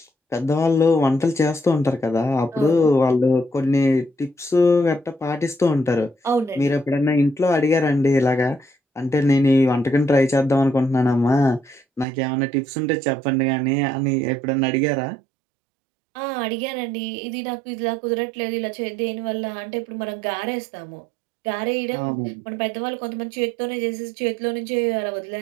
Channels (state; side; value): drops out; left; at 12.1 s